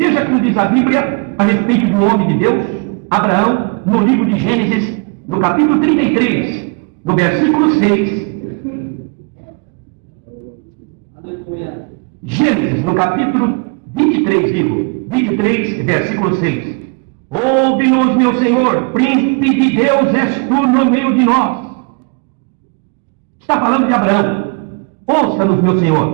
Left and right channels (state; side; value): quieter; left; 33.2 dB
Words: como diz a Bíblia a respeito do homem de Deus, Abraão, no livro de Gênesis, no capítulo 33, no versículo 6. Gênesis, no capítulo 23, digo, 23, versículo 6. Ouve-nos, meu Senhor, príncipe de Deus és tu no meio de nós. Está falando de Abraão. Ouça-nos, meu